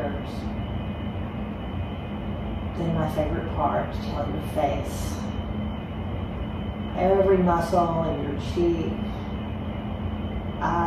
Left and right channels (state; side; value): identical; both; correlation 1.00